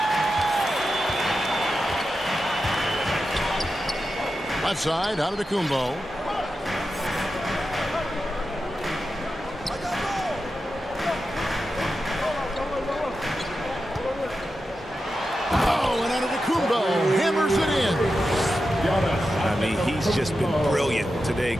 Left side, Antetokounmpo. Oh, and Antetokounmpo hammers it in. I mean, he's just been brilliant today,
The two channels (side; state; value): both; normal; correlation 0.90